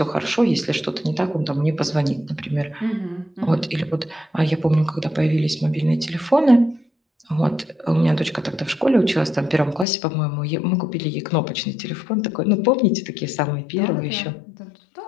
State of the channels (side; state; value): right; drops out; at 9.9 s